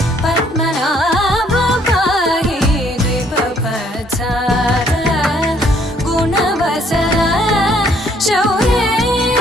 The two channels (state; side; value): normal; both; correlation 0.65